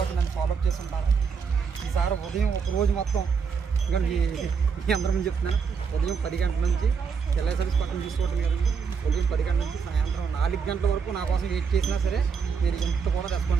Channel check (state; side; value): quieter; left; 5.9 dB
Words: నన్ను ఫాలోఅప్ చేసి ఉంటాను. ఈసారి ఉదయం ఒక రోజు మొత్తం ఇంకా మీ అందరం చెప్తున్నాను, ఉదయం 10 గంటల నుంచి ఎల్ఐ సర్వీస్ పక్కన తీసుకోవడం కదండి. ఉదయం 10 గంటల నుంచి సాయంత్రం 4 గంటల వరకు నా కోసం వెయిట్ చేసినా సరే నేను ఎంత కూడా